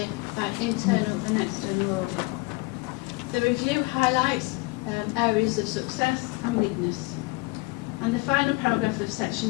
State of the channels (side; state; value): right; quieter; 25.5 dB